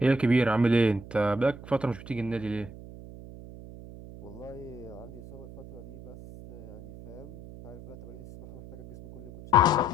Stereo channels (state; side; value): noise; right; hum, 15 dB below the sound